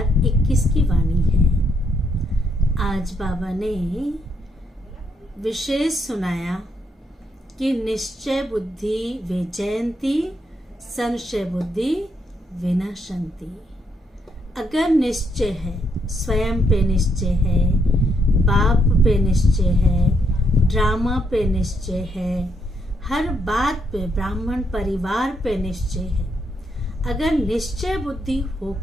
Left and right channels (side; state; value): both; normal; correlation 0.76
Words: की वाणी है। आज बाबा ने विशेष सुनाया कि निश्चय बुद्धि विजयंती संशय बुद्धि विनाशंती। अगर निश्चय है, स्वयं पे निश्चय है, बाप पे निश्चय है, ड्रामा पे निश्चय है, हर बात पे, ब्राह्मण परिवार पे निश्चय है, अगर निश्चय बुद्धि